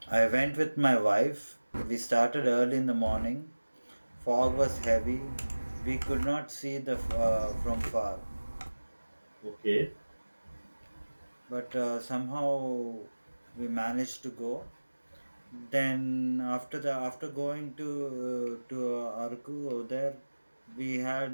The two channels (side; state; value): both; inverted; correlation -1.00